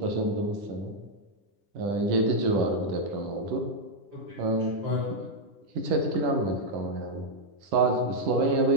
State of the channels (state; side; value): late; left; 10 ms